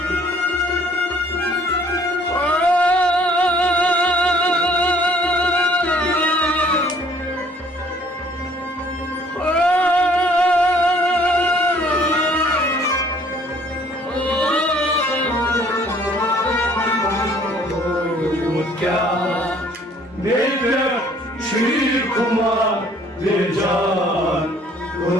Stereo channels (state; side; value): normal; both; correlation 0.59